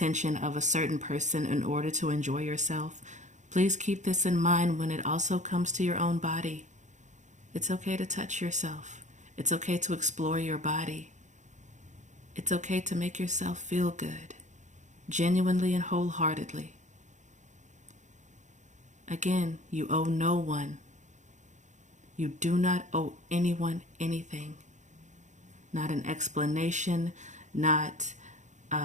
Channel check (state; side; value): late; left; 0.35 ms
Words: of a certain person in order to enjoy yourself. Please keep this in mind when it also comes to your own body. It's okay to touch yourself. It's okay to explore your body. It's okay to make yourself feel good, genuinely and wholeheartedly. Again, you owe no one. You do not owe anyone anything. Not an explanation, not